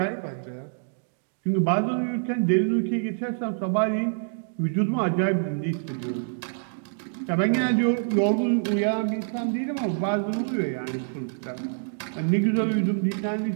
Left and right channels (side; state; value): left; silent; digital silence